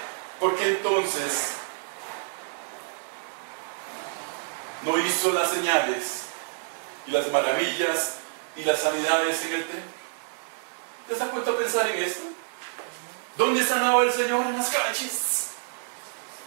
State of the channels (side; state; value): left; silent; 60 dB below the other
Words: ¿por qué entonces no hizo las señales y las maravillas y las sanidades en el templo? ¿Te has puesto a pensar en esto? ¿Dónde sanaba el Señor? En las calles.